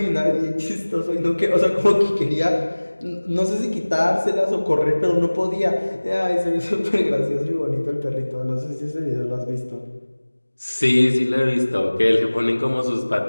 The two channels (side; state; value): both; inverted; correlation -1.00